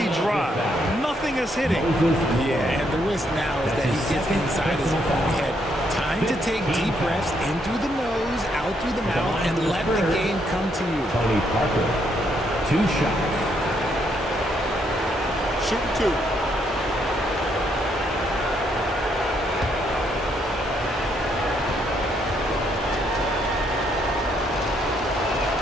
dry. Nothing is hitting. Yeah, and the risk now is that he gets inside his own head. Time to take deep breaths in through the nose, out through the mouth, and let the game come to you. Tony Parker. 2 shots. Shooting 2.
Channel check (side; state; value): both; normal; correlation 0.73